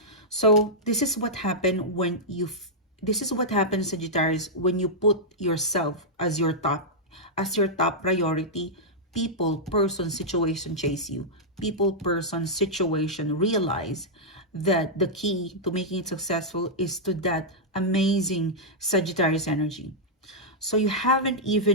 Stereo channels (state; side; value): normal; both; correlation -0.08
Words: so this is what happened when you this is what happens, Sagittarius, when you put yourself as your top priority. People, person, situation chase you. People, person, situation realize that the key to making it successful is to that amazing Sagittarius energy. So you haven't